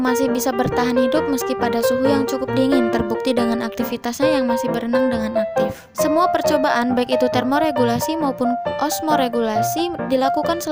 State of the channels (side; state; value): both; identical; correlation 1.00